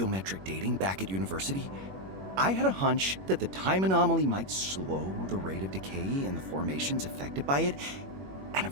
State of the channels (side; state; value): left; late; 21 ms